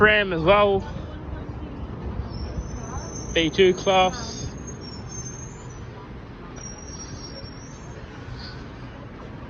as well. B2 class.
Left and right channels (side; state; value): both; identical; correlation 1.00